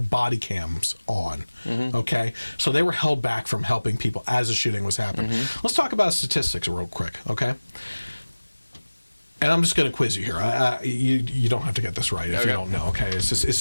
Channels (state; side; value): inverted; both; correlation -1.00